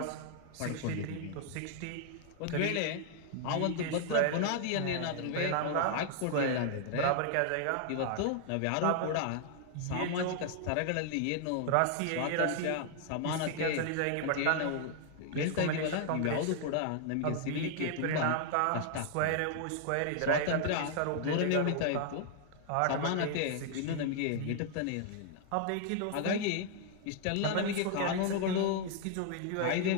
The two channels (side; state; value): both; different; correlation 0.00